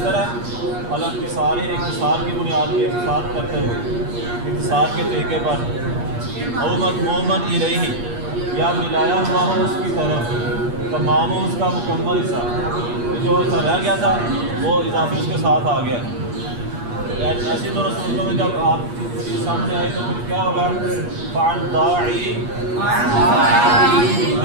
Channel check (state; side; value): late; left; 8.4 ms